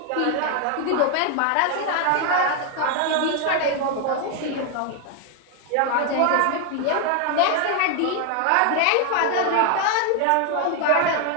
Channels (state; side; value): different; both; correlation 0.00